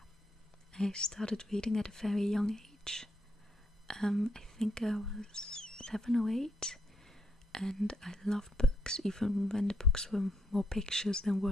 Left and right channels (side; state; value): both; normal; correlation 0.76